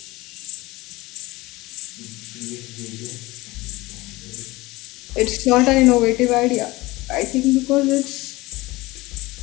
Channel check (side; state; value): right; quieter; 20.7 dB